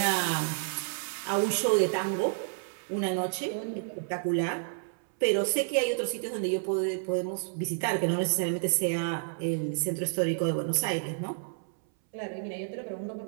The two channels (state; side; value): silent; left; 58 dB below the other